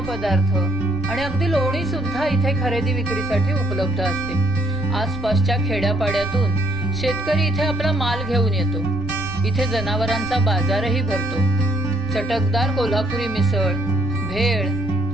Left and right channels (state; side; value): noise; right; rumble, 15 dB below the sound